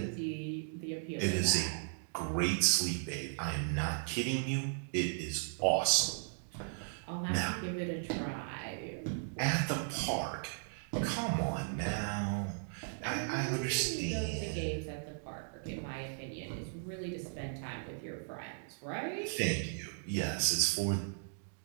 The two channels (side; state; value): left; silent; digital silence